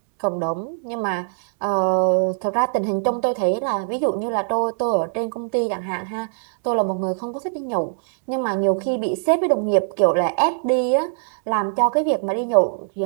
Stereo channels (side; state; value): left; silent; digital silence